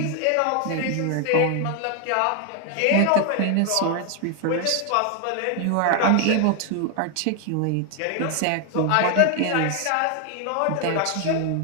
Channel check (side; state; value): both; different; correlation 0.00